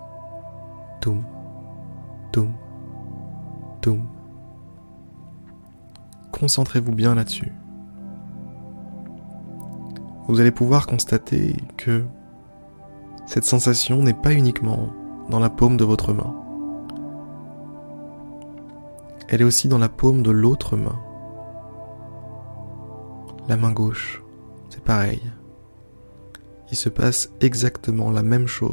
toum, toum, toum. Concentrez-vous bien là-dessus. Vous allez pouvoir constater que cette sensation n'est pas uniquement dans la paume de votre main. Elle est aussi dans la paume de l'autre main. La main gauche, c'est pareil. Il se passe exactement la même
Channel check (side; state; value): both; inverted; correlation -1.00